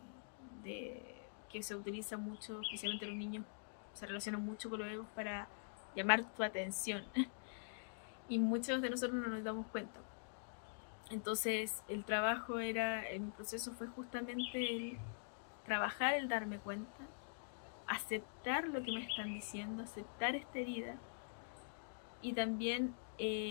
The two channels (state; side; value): silent; right; digital silence